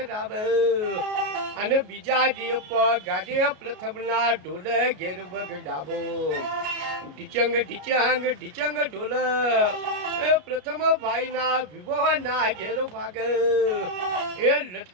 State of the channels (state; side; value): late; left; 33 ms